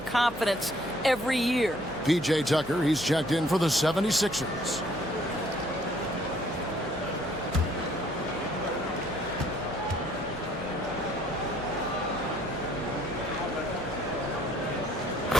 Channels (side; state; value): right; noise; hum, 17 dB below the sound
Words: confidence every year. P.J. Tucker, he's checked in for the 76ers.